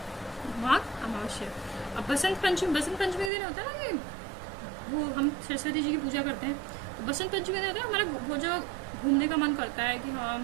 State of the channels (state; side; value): drops out; left; at 3.3 s